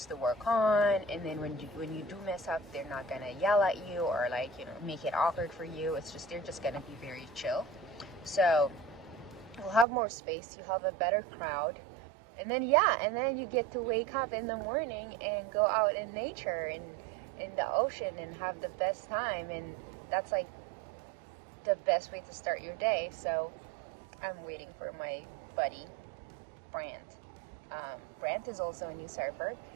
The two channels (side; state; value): left; drops out; at 9.9 s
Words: to work on. And then when you do mess up, they're not gonna yell at you or make it awkward for you. They're just gonna be very chill. So you'll have more space. You have a better crowd. And then you get to wake up in the morning and go out in nature and in the ocean and have the best time. And that's the best way to start your day. So I'm waiting for my buddy, Brant. Brant is also a new surfer,